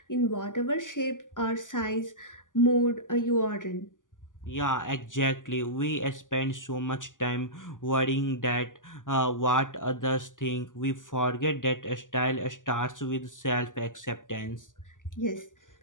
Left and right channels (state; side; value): late; right; 0.88 ms